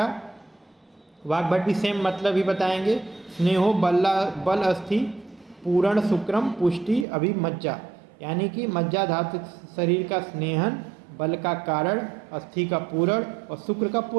वाग्भट, भी सेम मतलब ही बताएंगे। स्नेहो बल अस्थि पूर्ण शुक्रम पुष्टि अभिमज्जा, यानी कि मज्जा धातु शरीर का स्नेहन, बल का कारण, अस्थि का पूरण और शुक्र का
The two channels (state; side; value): drops out; left; at 7.1 s